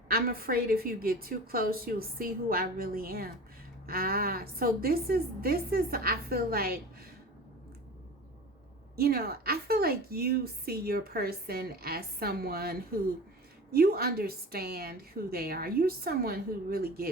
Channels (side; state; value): both; normal; correlation 0.35